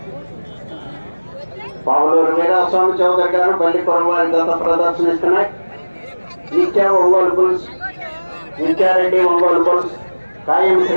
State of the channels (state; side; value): inverted; both; correlation -1.00